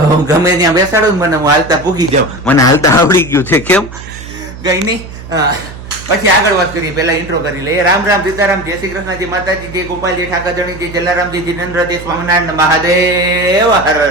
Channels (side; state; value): right; noise; hum, 14 dB below the sound